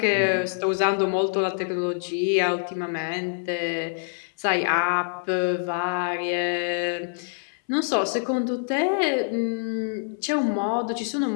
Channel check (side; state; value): right; silent; 61 dB below the other